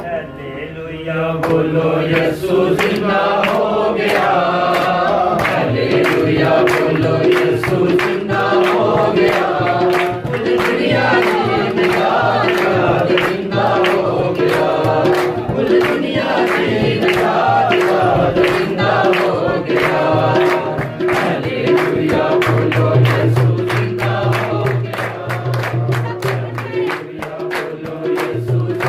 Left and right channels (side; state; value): both; identical; correlation 1.00